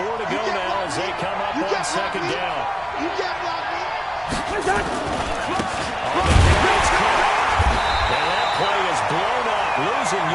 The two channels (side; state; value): both; identical; correlation 1.00